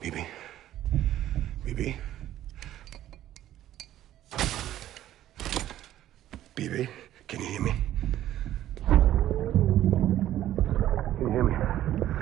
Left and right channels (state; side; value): quieter; left; 12.8 dB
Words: Bibi? Bibi? Bibi, can you hear me? Can you hear me?